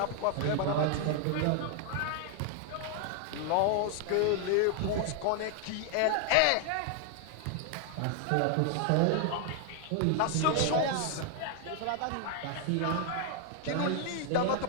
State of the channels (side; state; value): both; different; correlation 0.00